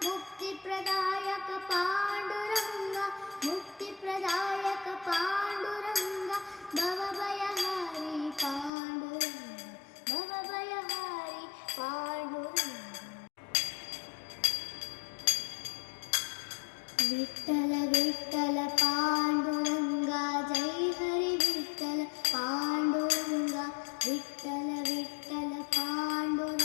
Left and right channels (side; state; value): right; drops out; at 8.7 s